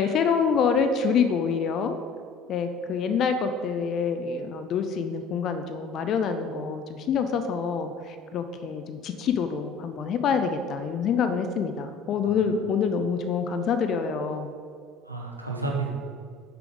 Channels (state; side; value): quieter; right; 5.3 dB